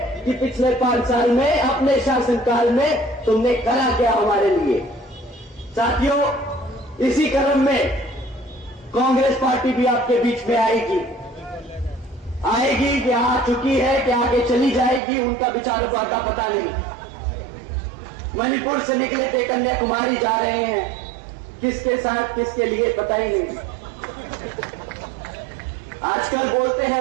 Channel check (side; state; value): left; drops out; at 15.0 s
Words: कि पिछले 5 साल में अपने शासनकाल में तुमने करा क्या हमारे लिए। साथियों, इसी क्रम में कांग्रेस पार्टी भी आपके बीच में आएगी कि आ चुकी है, कि आगे चली जाएगी, उनका विचारों का पता नहीं। मणिपुर से निकले थे, कन्याकुमारी जा रहे हैं, किसके साथ किसके लिए पता ही नहीं। आजकल बोलते